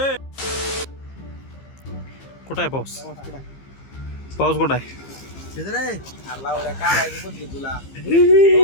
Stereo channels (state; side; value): late; right; 15 ms